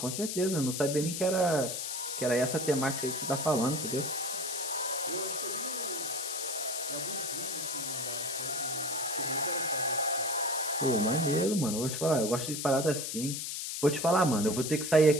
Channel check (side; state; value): left; noise; hiss, 4 dB below the sound